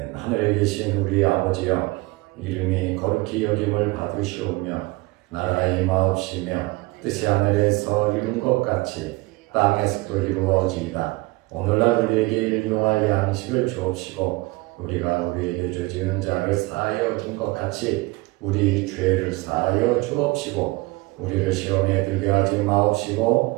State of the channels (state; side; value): quieter; left; 23.0 dB